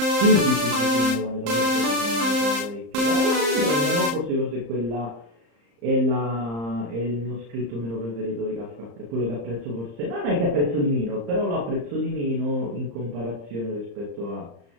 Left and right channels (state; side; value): late; left; 35 ms